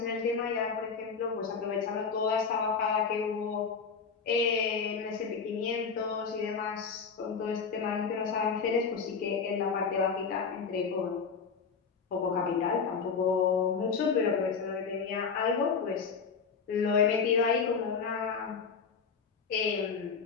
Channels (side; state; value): right; quieter; 5.6 dB